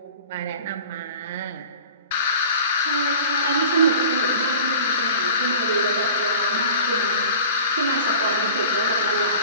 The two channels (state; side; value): inverted; both; correlation -0.40